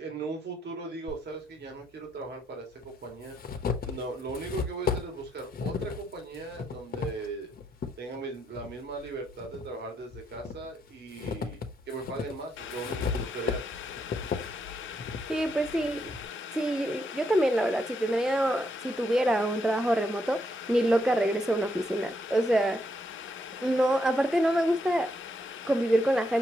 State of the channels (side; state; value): both; normal; correlation 0.78